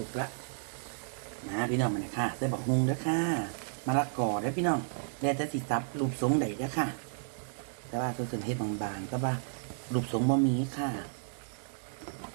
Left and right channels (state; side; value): silent; left; digital silence